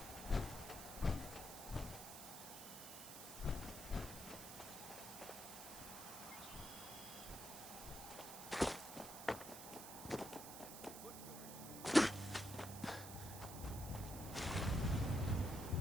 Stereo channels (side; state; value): right; noise; hiss, 10 dB below the sound